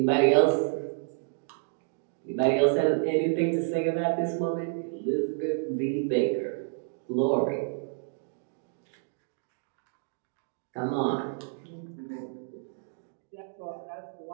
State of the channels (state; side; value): silent; left; digital silence